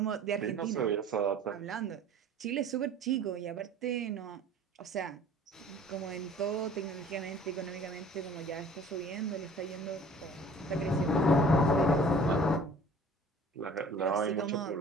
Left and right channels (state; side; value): normal; both; correlation 0.49